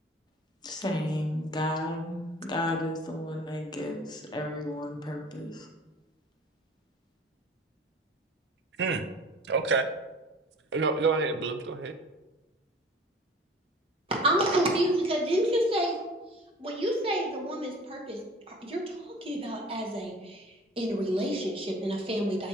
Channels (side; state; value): both; normal; correlation 0.45